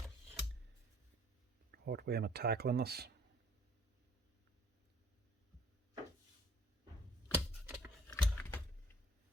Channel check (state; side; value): normal; both; correlation 0.58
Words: What way am I tackling this? I'll